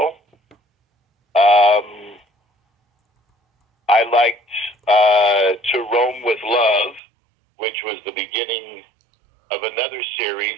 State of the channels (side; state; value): left; drops out; at 7.0 s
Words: I liked To Roam with Love, which was the beginning of another series,